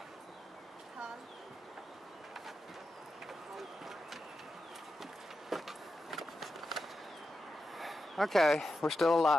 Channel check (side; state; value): both; normal; correlation 0.89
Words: Huh? Okay, we're still